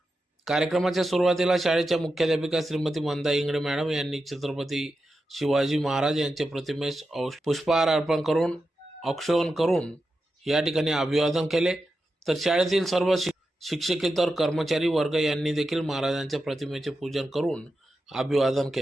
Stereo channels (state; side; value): normal; both; correlation 0.89